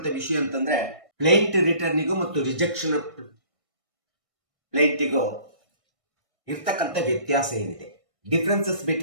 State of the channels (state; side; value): late; left; 1.6 ms